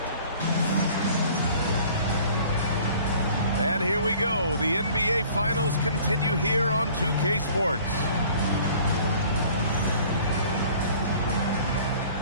And here we go. The NBA Finals continue here on 2K Sports.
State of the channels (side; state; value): both; inverted; correlation -0.51